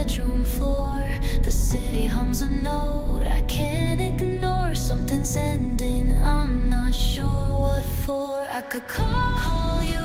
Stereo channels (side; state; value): both; identical; correlation 1.00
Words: floor. The city hums a note I can't ignore. Something's ending, I'm not sure what for. I could call